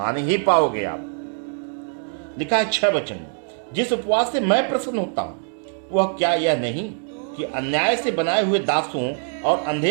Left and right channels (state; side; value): silent; left; 63 dB below the other